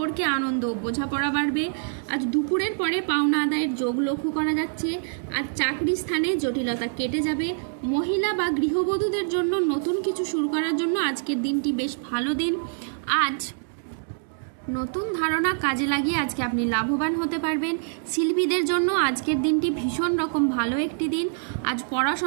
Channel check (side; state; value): left; silent; digital silence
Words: আনন্দ ও বোঝাপড়া বাড়বে। আজ দুপুরের পরে পাওনা আদায়ের যোগ লক্ষ্য করা যাচ্ছে। আজ চাকরি স্থানে জটিলতা কেটে যাবে। মহিলা বা গৃহবধূদের জন্য নতুন কিছু শুরু করার জন্য আজকের দিনটি বেশ ভালো দিন। আজ নতুন ধারণা কাজে লাগিয়ে আজকে আপনি লাভবান হতে পারবেন। শিল্পীদের জন্য আজকের দিনটি ভীষণ রকম ভালো একটি দিন। আজ